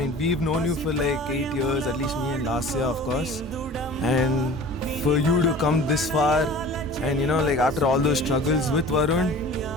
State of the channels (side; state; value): both; normal; correlation 0.42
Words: we've known you for like 8 years, at least me and last year, of course. And for you to come this far, and you know, like after all those struggles with Varun,